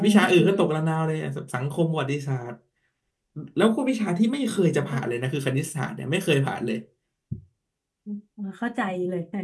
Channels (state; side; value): identical; both; correlation 1.00